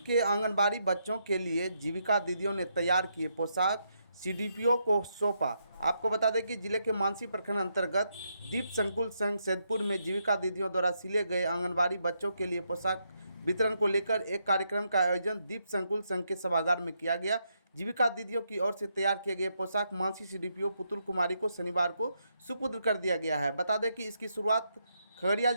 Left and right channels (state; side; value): inverted; both; correlation -0.79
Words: आंगनबाड़ी बच्चों के लिए जीविका दीदियों ने तैयार किए पोशाक सीडीपीओ को सौंपा। आपको बता दें कि जिले के मानसी प्रखंड अंतर्गत दीप संकुल संघ सैदपुर में जीविका दीदियों द्वारा सिले गए आंगनबाड़ी बच्चों के लिए पोशाक वितरण को लेकर एक कार्यक्रम का आयोजन दीप संकुल संघ के सभागार में किया गया। जीविका दीदियों की ओर से तैयार किए गए पोशाक मानसी सीडीपीओ पुतुल कुमारी को शनिवार को सुपुर्द कर दिया गया है। बता दें कि इसकी शुरुआत खगड़िया